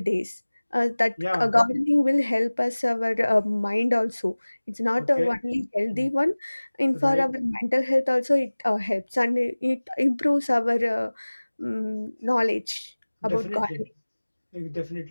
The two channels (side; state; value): both; inverted; correlation -1.00